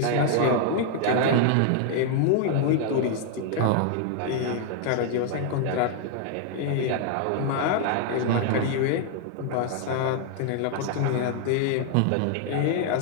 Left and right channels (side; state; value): both; different; correlation 0.00